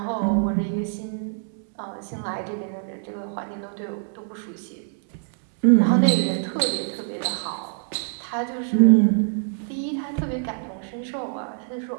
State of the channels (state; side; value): silent; left; digital silence